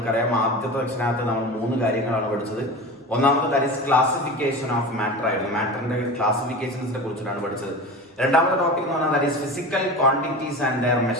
ആദ്യത്തെ സെക്ഷനകത്ത് നമ്മൾ 3 കാര്യങ്ങളാണ് പഠിച്ചത്. ഒന്നാമത് that is classification of matter ആയിരുന്നു. മാറ്ററിന്റെ ക്ലാസിഫിക്കേഷൻസിനെ കുറിച്ചിട്ടാണ് പഠിച്ചത്. രണ്ടാമത്തെ ടോപ്പിക് എന്ന് പറഞ്ഞാൽ that is physical quantities and their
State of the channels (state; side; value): normal; both; correlation 0.30